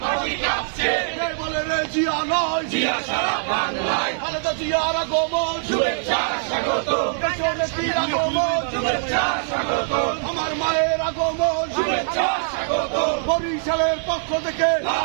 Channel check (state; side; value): silent; left; digital silence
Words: মাটি কাঁপছে, কে বলে রে জিয়া নয়, জিয়া সারা বাংলায়, খালেদা জিয়ার আগমন, শুভেচ্ছা স্বাগত, দেশনেত্রীর আগমন, শুভেচ্ছা স্বাগত, আমার মায়ের আগমন, শুভেচ্ছা স্বাগত, বরিশালের পক্ষ থেকে,